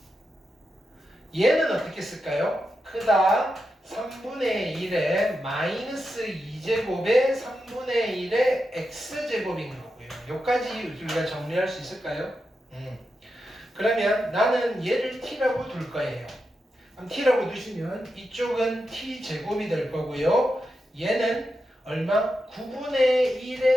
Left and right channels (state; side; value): normal; both; correlation 0.87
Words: 얘는 어떻게 쓸까요? 크다 3분의 1의 마이너스 2제곱에 3분의 1의 x제곱인 거고요. 여기까지 우리가 정리할 수 있을까요? 그러면 나는 얘를 t라고 둘 거예요. 그럼 t라고 두시면 이쪽은 t제곱이 될 거고요. 얘는 얼마? 9분의